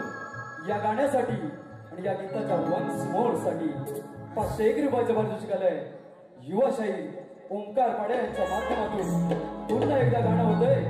या गाण्यासाठी आणि या गीताच्या वन्स मोर साठी 501 रुपयाचं पारितोषिक आलंय. युवाशाही ओंकार पाडे यांच्या माध्यमातून पुन्हा एकदा गाणं होतंय,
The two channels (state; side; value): identical; both; correlation 1.00